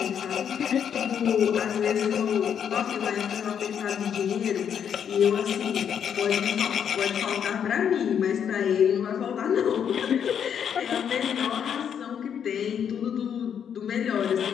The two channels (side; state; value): right; quieter; 8.2 dB